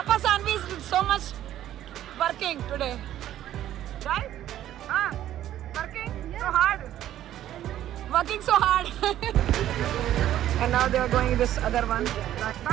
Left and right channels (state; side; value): quieter; left; 12.4 dB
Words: Sanvi is so much working today, right? Working so hard. And now they are going this other one.